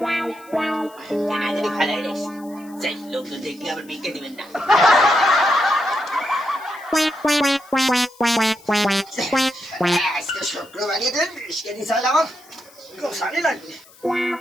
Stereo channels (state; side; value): noise; left; hiss, 25 dB below the sound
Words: কেনা জানি ফেলাই রে সেই লোকজন দেখলে আবার ভিক্ষে দিবেন না আজকে শুক্রবারে দিন বিস্কে দিছাল আমার গোসানি লাগবে